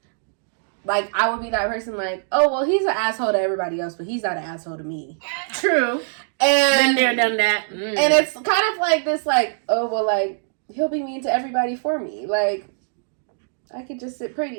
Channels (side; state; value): left; silent; digital silence